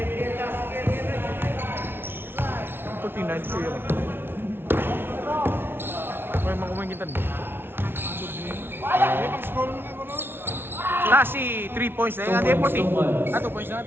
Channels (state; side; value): late; left; 0.11 ms